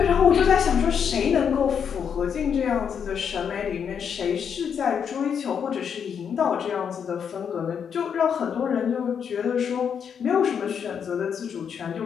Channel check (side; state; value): right; quieter; 7.4 dB